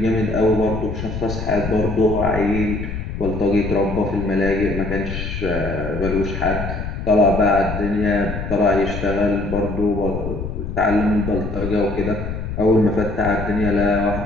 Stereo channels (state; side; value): noise; left; rumble, 6 dB below the sound